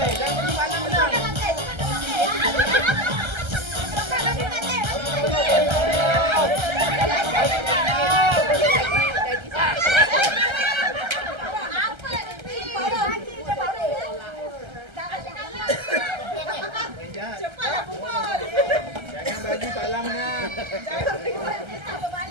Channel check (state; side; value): late; left; 1.3 ms